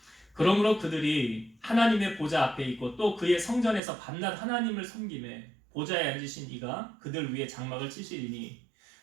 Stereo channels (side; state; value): left; drops out; at 3.8 s